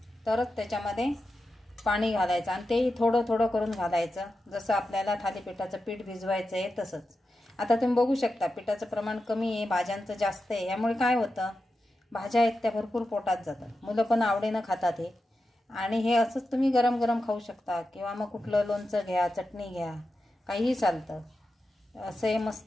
तरच त्याच्यामध्ये पाणी घालायचं आणि तेही थोडं करून घालायचं, जसं आपल्याला थालीपीठाचं पीठ भिजवायचं आहे तसंच। आता तुम्ही बघू शकता पिठाचं प्रमाण कमी आहे, भाज्यांचं जास्त आहे, यामुळे काय होतं भाज्या आहेत त्या भरपूर पोटात जातात, मुलं पण आवडीनं खातात हे। आणि हे असंच तुम्ही गरम खाऊ शकता किंवा मग कुठलं लोणचं घ्या, चटणी घ्या, काहीही चालतं। असं हे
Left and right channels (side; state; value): both; normal; correlation 0.90